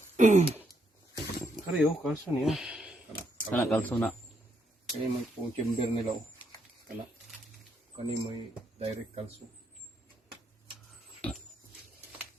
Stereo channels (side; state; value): both; normal; correlation 0.76